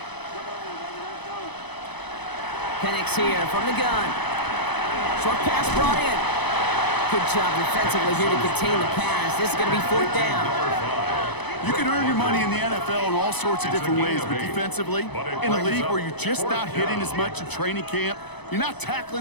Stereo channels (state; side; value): late; right; 0.99 ms